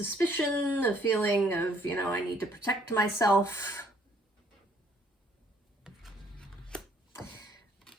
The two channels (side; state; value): both; normal; correlation 0.63